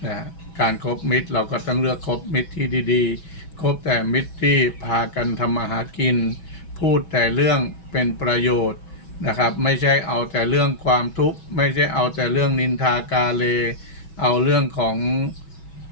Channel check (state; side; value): late; right; 6.2 ms